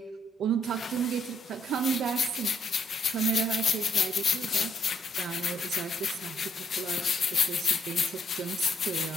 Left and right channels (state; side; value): normal; both; correlation 0.72